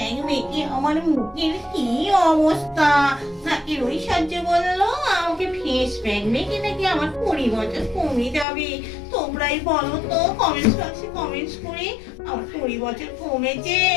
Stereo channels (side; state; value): right; drops out; at 8.5 s